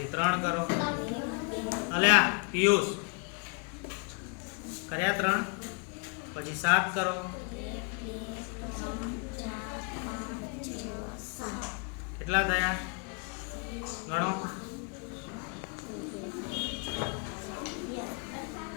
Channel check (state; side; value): quieter; right; 35.7 dB